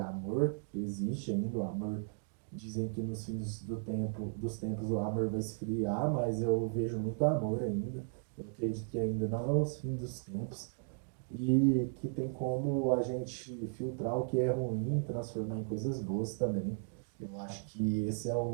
que existe ainda, o amor. Dizem que nos fins dos tempos o amor vai esfriar, mas eu vejo muito amor ainda. Eu acredito que ainda não é os fins dos tempos e que tem como a gente filtrar o que é ruim e transformar em coisas boas também. Eu acho que esse é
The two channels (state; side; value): silent; left; digital silence